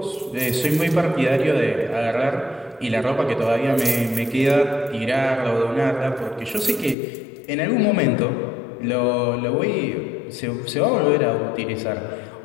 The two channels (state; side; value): drops out; right; at 7.0 s